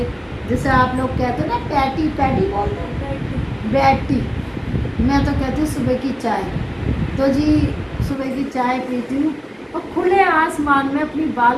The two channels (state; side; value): identical; both; correlation 1.00